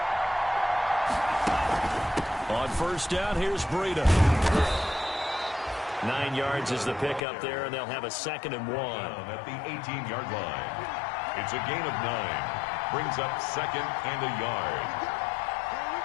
On first down, here's Breida. 9 yards is the pickup there, and they'll have a 2nd and 1. At the 18-yard line. It's a gain of 9. Brings up 2nd and a yard.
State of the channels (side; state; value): right; drops out; at 7.2 s